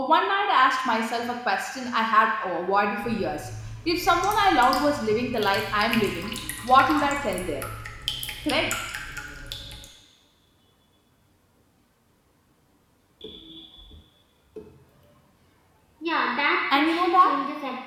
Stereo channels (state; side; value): identical; both; correlation 1.00